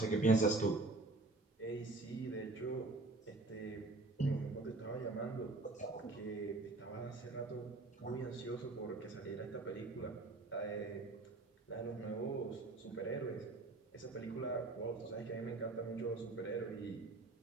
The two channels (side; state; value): left; quieter; 3.2 dB